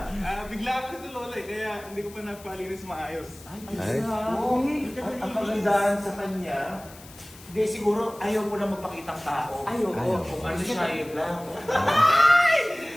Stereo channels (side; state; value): left; noise; hiss, 20 dB below the sound